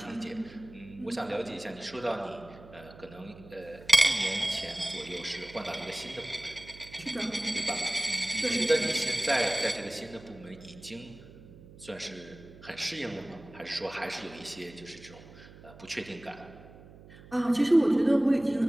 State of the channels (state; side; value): noise; right; hum, 19 dB below the sound